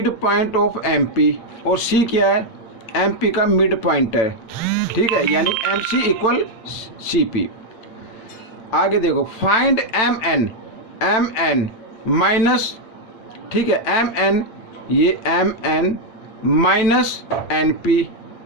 midpoint of M P, और सी क्या है, एम पी का मिड पॉइंट है। ठीक ठीक है, यानी M C equal C P. आगे देखो, फाइंड एम एन माइनस, ठीक है, एम एन, ये M N minus N P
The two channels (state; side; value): late; right; 8.9 ms